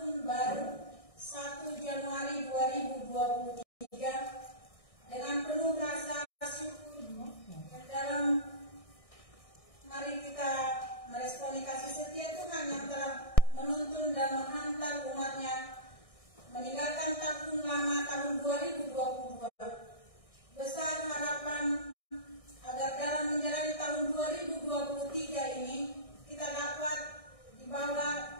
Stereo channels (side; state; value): right; late; 1.6 ms